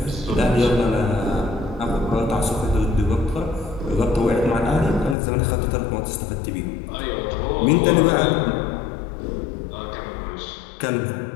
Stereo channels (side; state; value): right; drops out; at 5.2 s